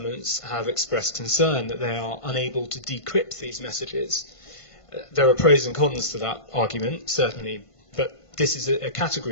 have expressed concern that they are unable to decrypt these messages. There are pros and cons to that argument, certainly, but this is a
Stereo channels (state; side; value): late; right; 1.5 ms